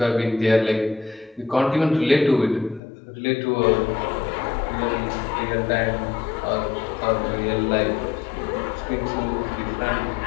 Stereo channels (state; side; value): drops out; right; at 2.8 s